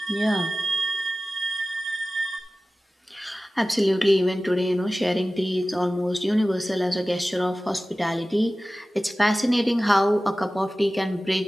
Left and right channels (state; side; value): normal; both; correlation 0.96